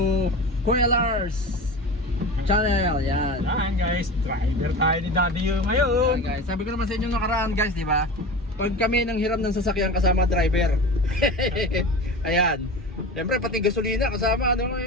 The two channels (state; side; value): normal; both; correlation 0.31